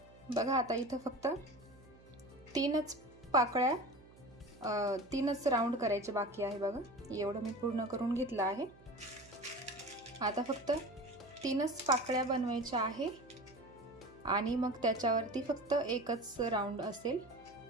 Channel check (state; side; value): noise; right; hum, 24 dB below the sound